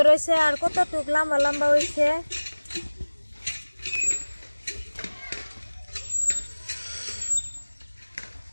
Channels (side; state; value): both; inverted; correlation -1.00